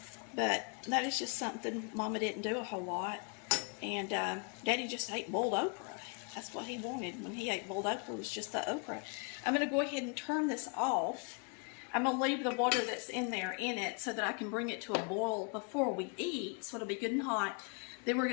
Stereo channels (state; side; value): quieter; right; 36.0 dB